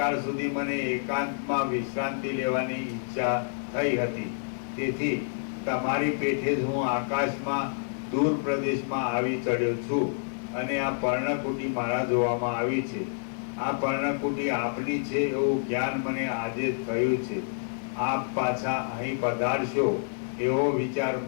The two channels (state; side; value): silent; right; 59 dB below the other